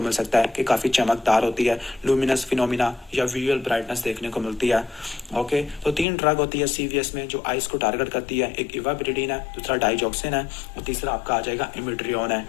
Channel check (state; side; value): drops out; right; at 6.1 s